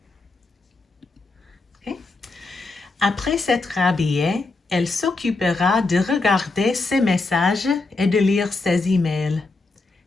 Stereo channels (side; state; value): right; quieter; 3.5 dB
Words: Okay. Après s'être habillée, elle s'occupera de regarder ses messages et de lire ses emails.